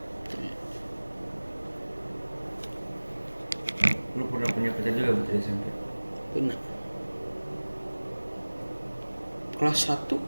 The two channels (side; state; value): both; inverted; correlation -1.00